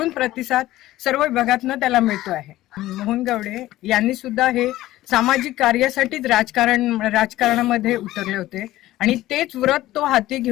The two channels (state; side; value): quieter; right; 15.8 dB